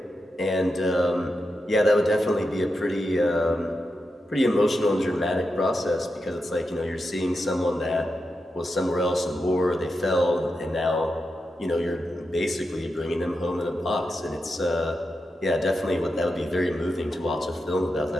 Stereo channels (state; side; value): normal; both; correlation 0.88